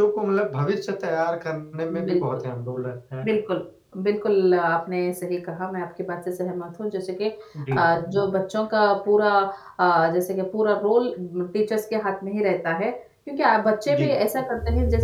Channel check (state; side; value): identical; both; correlation 1.00